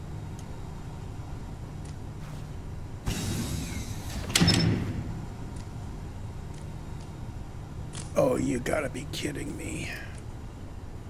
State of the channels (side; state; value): both; identical; correlation 1.00